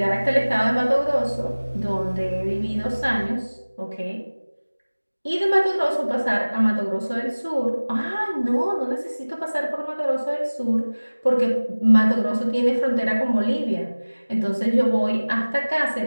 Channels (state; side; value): inverted; both; correlation -1.00